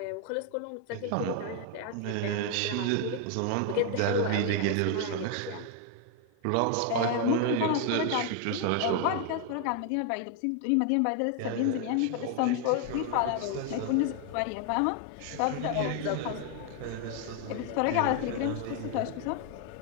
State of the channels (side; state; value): both; different; correlation 0.00